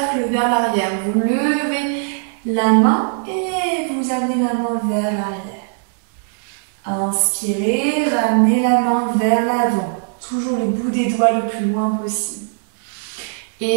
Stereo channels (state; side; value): silent; left; 66 dB below the other